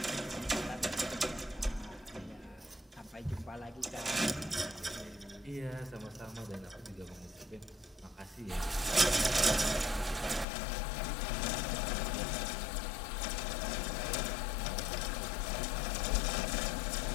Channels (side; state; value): right; drops out; at 10.5 s